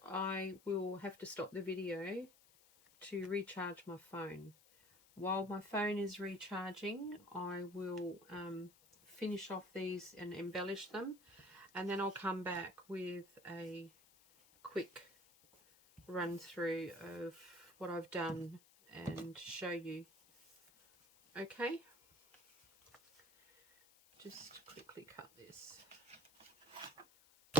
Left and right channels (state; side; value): noise; left; hiss, 26 dB below the sound